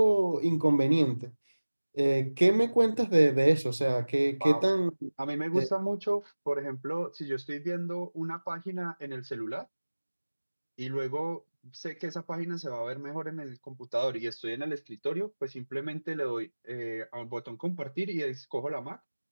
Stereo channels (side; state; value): both; inverted; correlation -1.00